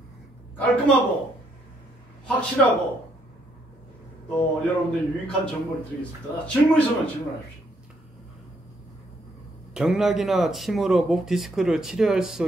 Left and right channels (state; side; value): normal; both; correlation 0.72